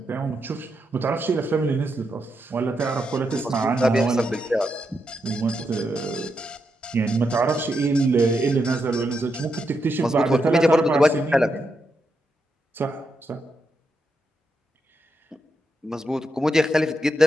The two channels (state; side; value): normal; both; correlation 0.83